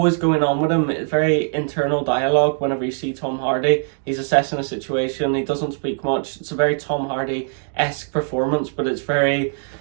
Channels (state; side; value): silent; left; digital silence